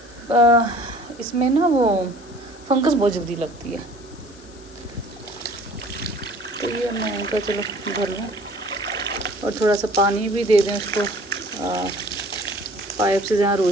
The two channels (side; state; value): left; noise; hiss, 23 dB below the sound